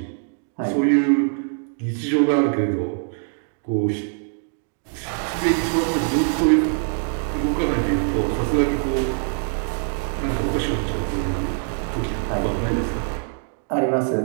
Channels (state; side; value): silent; left; 58 dB below the other